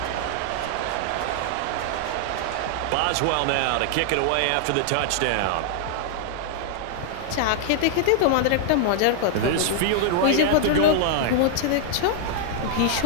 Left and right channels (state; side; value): different; both; correlation -0.01